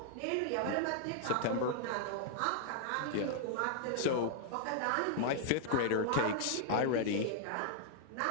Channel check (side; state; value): both; different; correlation -0.01